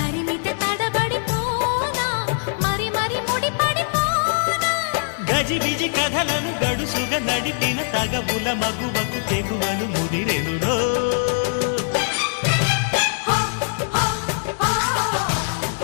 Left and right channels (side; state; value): right; silent; digital silence